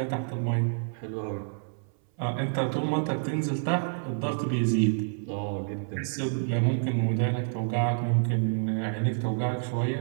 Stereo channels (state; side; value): silent; left; 58 dB below the other